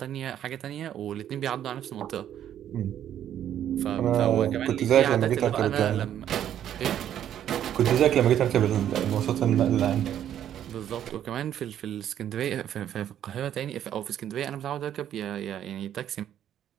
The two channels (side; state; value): left; quieter; 10.5 dB